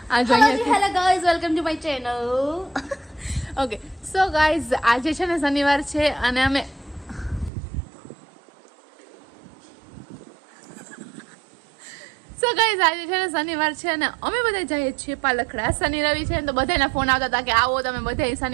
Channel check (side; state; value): left; drops out; at 7.5 s